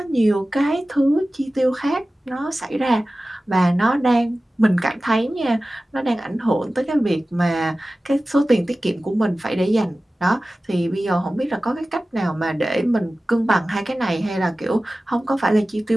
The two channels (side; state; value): both; normal; correlation 0.96